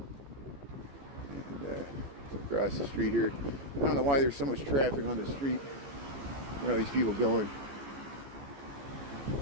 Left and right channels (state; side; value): late; left; 14 ms